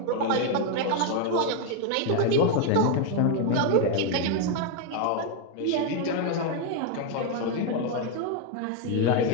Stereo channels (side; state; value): both; different; correlation 0.01